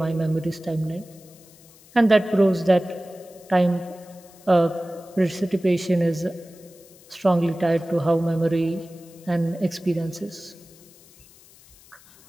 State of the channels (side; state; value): left; noise; hiss, 25 dB below the sound